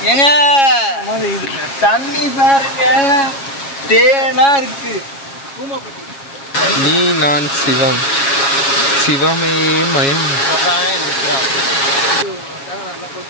ஏங்க தண்ணி பாருங்க, தேனா இருக்கு. நீ நான் சிவம், சிவமே மயம்.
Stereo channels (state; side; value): late; right; 7.3 ms